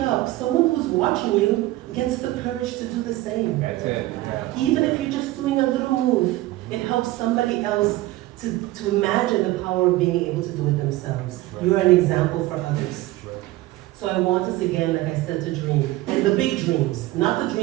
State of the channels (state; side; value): quieter; left; 17.4 dB